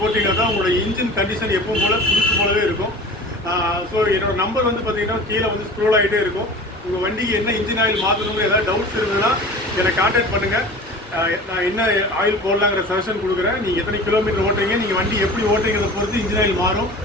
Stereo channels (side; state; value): both; normal; correlation 0.39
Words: தான் உங்களோட இன்ஜின் கண்டிஷன் எப்பவும் போல் புதுசு போலவே இருக்கும். ஸோ என்னோட நம்பர் வந்து பார்த்தீங்கன்னா கீழே வந்து ஸ்க்ரோல் ஆகிட்டே இருக்கும். உங்கள் வண்டிக்கு என்ன இன்ஜின் ஆயில் மாற்றணுங்கிற ஏதாவது டவுட்ஸ் இருந்ததுன்னா என்னை கான்டாக்ட் பண்ணுங்கள். நான் என்ன ஆயில் போடலாங்கிற சஜஷன் கொடுக்குறேன். நீங்கள் எத்தனை கிலோமீட்டர் ஓட்டுறீங்க, நீங்கள் வண்டி எப்படி ஓட்டுறீங்கிறத பொறுத்து இன்ஜின் ஆயில் மாறும்.